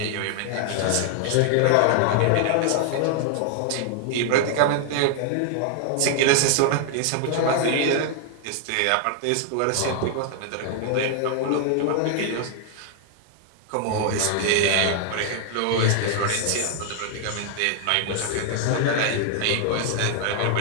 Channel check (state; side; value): different; both; correlation 0.00